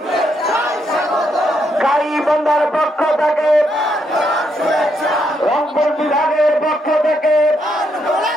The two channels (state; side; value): normal; both; correlation 0.77